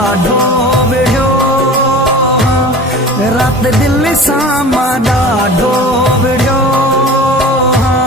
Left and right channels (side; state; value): both; normal; correlation 0.39